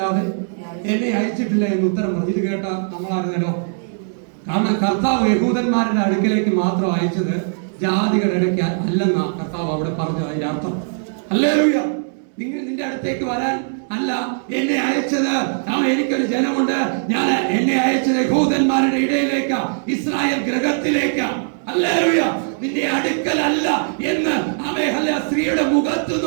എന്നെ അയച്ചിട്ടില്ല എന്ന് ഉത്തരം പറഞ്ഞു. ഇത് കേട്ട നമ്മളായിരുന്നല്ലോ. കാരണം കർത്താവ് യഹൂദന്മാരുടെ അടുക്കലേക്ക് മാത്രം അയച്ചത് ജാതികളുടെ ഇടയ്ക്ക് അല്ലെന്നാ കർത്താവ് അവിടെ പറഞ്ഞു. അതിന്റെ അർത്ഥം ഹല്ലേലൂയ. നിന്റെ അടുത്തേക്ക് വരാൻ അല്ല എന്നെ അയച്ചത്. എനിക്കൊരു ജനമുണ്ട്. ഞാൻ എന്നെ അയച്ചത് യഹൂദന്മാരുടെ ഇടയിലേക്ക്, ഇസ്രായേൽ ഗൃഹത്തിലേക്ക്. ഹല്ലേലൂയ. നിന്റെ അടുക്കലല്ല എന്ന് ആമേ ഹല്ലേലൂയ സ്ത്രീയുടെ മുഖത്ത്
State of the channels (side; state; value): left; silent; digital silence